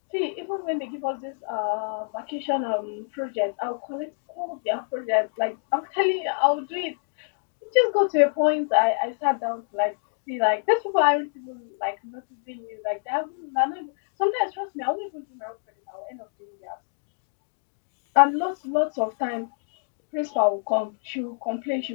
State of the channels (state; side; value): silent; right; digital silence